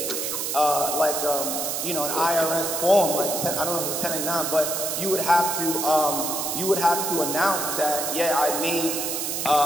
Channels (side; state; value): right; noise; hiss, 2 dB below the sound